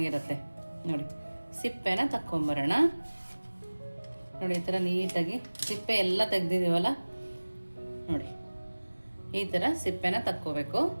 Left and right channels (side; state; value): both; inverted; correlation -1.00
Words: ನೋಡಿ, ಸಿಪ್ಪೆನ ತಕ್ಕೊಂಬರೋಣ. ನೋಡಿ, ಈ ಥರ ನೀಟಾಗಿ ಸಿಪ್ಪೆ ಎಲ್ಲ ತೆಗ್ದಿದ್ದೀವಲ್ಲ, ನೋಡಿ ಈ ಥರ ಸಿಪ್ಪೆನ ತಕ್ಕೋಬೇಕು.